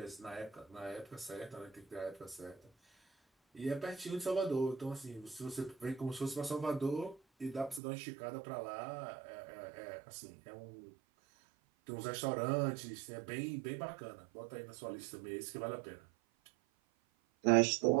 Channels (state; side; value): drops out; left; at 7.8 s